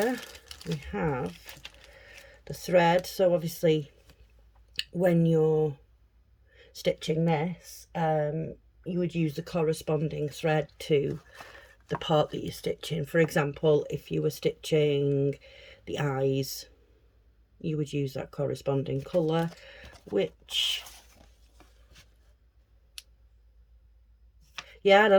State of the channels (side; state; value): both; identical; correlation 1.00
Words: we have the thread. So obviously when you're stitching this, you would use the corresponding thread to the part that you're stitching. For example, if you were stitching the eyes, you would use that corresponding colour, which Yeah, I